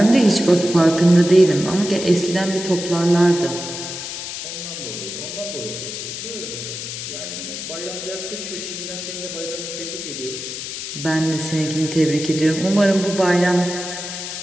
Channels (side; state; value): left; noise; hiss, 7 dB below the sound